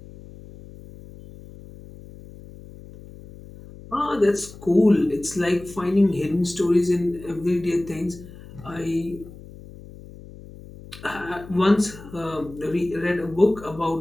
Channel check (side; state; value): left; noise; hum, 17 dB below the sound